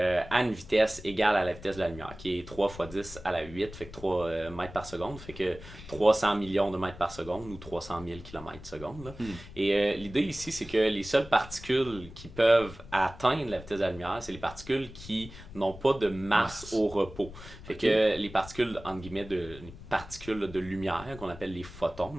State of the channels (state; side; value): noise; left; rumble, 15 dB below the sound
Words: une vitesse égale à la vitesse de la lumière, qui est 3 fois 10 à la 8, fait que 3 mètres par seconde, fait que 300 millions de mètres par seconde ou 300 000 kilomètres seconde. Là. Et l'idée ici, c'est que les seules particules qui peuvent atteindre la vitesse de la lumière, c'est les particules qui n'ont pas de masse au repos. Fait que les particules, entre guillemets, les particules de lumière, qu'on appelle les photons,